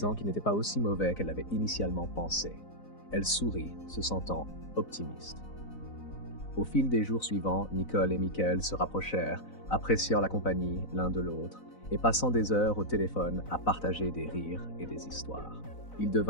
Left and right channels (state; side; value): late; right; 4.0 ms